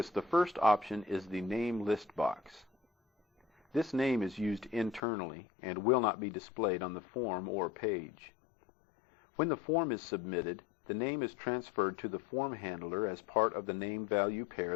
the first option is the Name List box. This name is used internally and will not be displayed on the form or page. When the form is submitted, the name is transferred to the form handler as part of the name-value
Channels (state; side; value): drops out; right; at 5.0 s